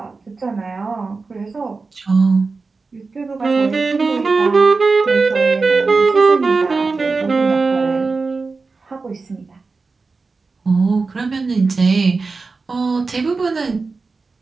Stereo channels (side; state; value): left; quieter; 4.1 dB